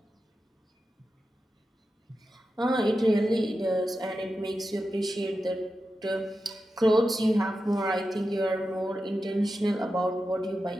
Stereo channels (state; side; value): normal; both; correlation 0.91